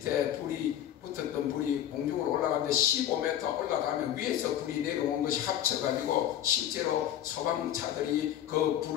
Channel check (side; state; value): right; quieter; 11.2 dB